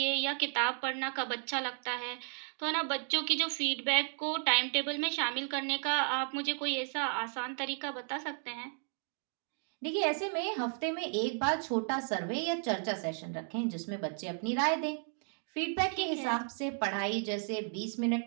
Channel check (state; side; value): silent; left; 55 dB below the other